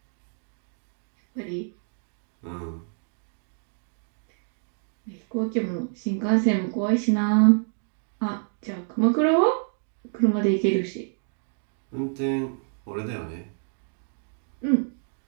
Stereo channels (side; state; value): left; silent; 60 dB below the other